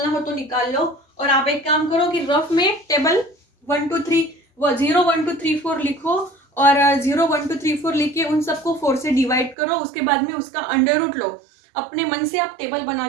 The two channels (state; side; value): drops out; left; at 9.6 s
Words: हो तो निकाल लो, और आप एक काम करो कि रफ में टेबल 1 2 3 0 1 2 3 4 लिखो, और 0 1 2 3 4 लिख के उन सबको 4 से डिवाइड करो, उसके बाद में उसका अंडर रूट लो। अपने मन से आप टेबल बना